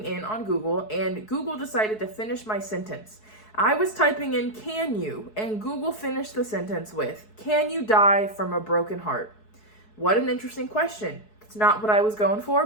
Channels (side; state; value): right; late; 4.7 ms